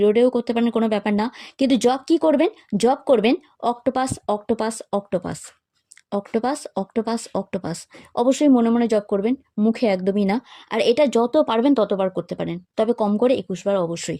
করতে পারেন, কোনো ব্যাপার না। কিন্তু জপ কি করবেন? জপ করবেন octopus, octopus, octopus, octopus, octopus, octopus. অবশ্যই মনে মনে জপ করবেন, মুখে একদমই না। আর এটা যত পারবেন ততবার করতে পারেন, তবে কম করে 21 বার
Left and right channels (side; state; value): both; identical; correlation 1.00